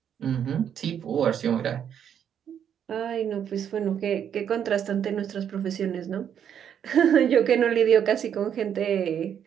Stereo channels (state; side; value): quieter; left; 8.8 dB